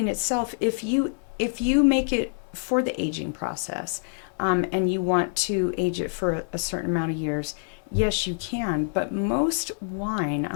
itself, if you make it for the aging process, and you want to age it for a certain amount of years, yes, you can. But most wine, I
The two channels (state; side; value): silent; right; digital silence